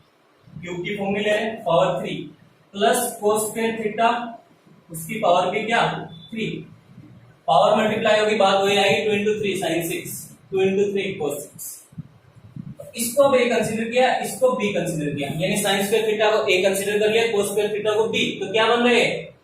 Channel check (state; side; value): identical; both; correlation 1.00